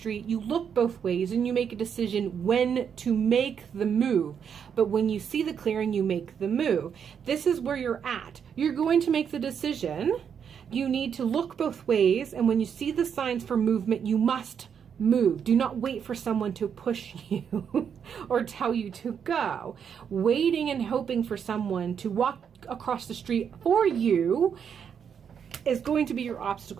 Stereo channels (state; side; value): quieter; left; 7.5 dB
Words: you look both ways and you make a decision when to make the move. But when you see the clearing, you make the move. This is where you're at. You're going to make the decision. You need to look both ways. And when you see the signs for movement, you must move. Do not wait for someone to push you or tell you to go. Waiting and hoping for someone to walk across the street for you is going to be your